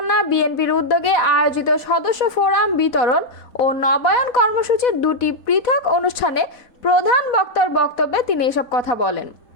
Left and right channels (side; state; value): right; late; 4.1 ms